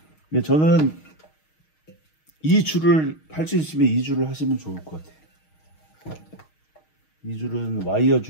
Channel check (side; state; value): right; late; 6.4 ms